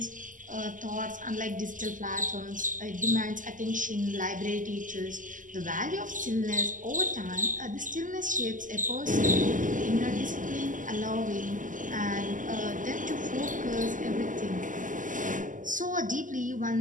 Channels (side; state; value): left; late; 0.38 ms